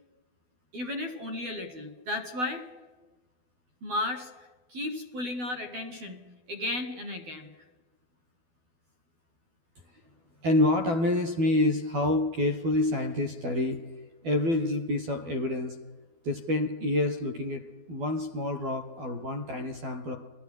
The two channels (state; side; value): late; left; 12 ms